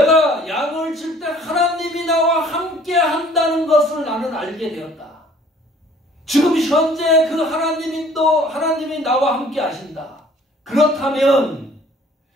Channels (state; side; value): normal; both; correlation 0.55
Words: 양을 칠 때 하나님이 나와 함께 한다는 것을 나는 알게 되었다. 지금 현재 그 하나님이 나와 함께 하신다. 그렇다면